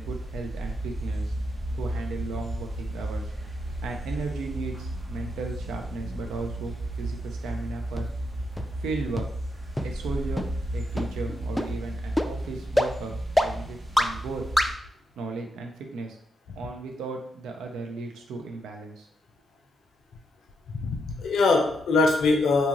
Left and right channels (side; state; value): both; normal; correlation 0.81